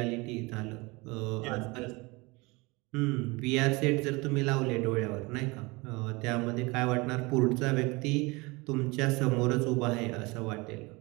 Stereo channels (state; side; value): quieter; left; 24.9 dB